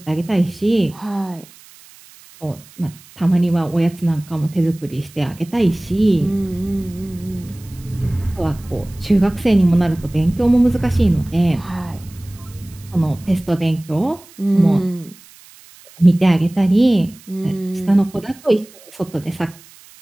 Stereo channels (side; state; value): right; noise; hiss, 24 dB below the sound